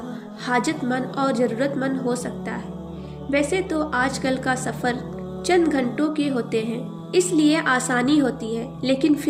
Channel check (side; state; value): both; identical; correlation 1.00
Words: حاجت مند اور ضرورت مند ہو سکتا ہے۔ ویسے تو آج کل کا سفر چند گھنٹوں کے ہوتے ہیں، اس لیے آسانی ہوتی ہے، لیکن